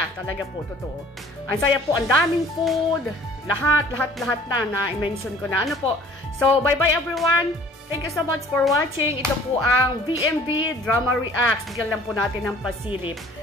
Talaga po, totoo. Ang saya po, ang daming food. Lahat na i-mention ko na. Po. So, bye-bye everyone. Thank you so much for watching. Ito po ang VMB Drama Reacts. Bigyan lang po natin ng pasilip.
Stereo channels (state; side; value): normal; both; correlation 0.52